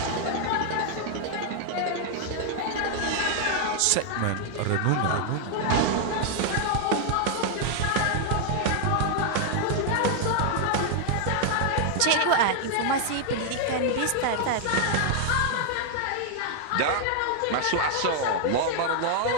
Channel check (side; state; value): both; different; correlation 0.00